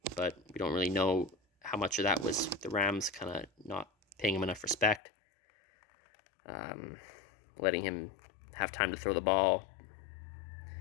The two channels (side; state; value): right; drops out; at 5.0 s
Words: but we don't really know how much of that was the Rams kind of not paying him enough respect, letting him have time to throw the ball,